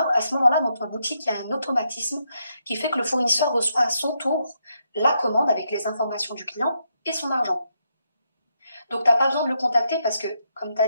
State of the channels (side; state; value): both; inverted; correlation -0.80